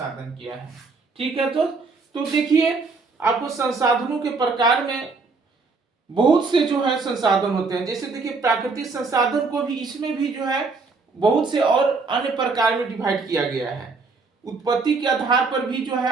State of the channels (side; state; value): left; quieter; 4.2 dB